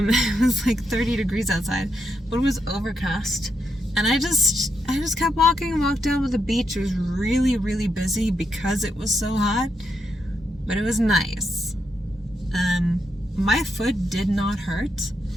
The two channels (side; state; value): both; normal; correlation 0.82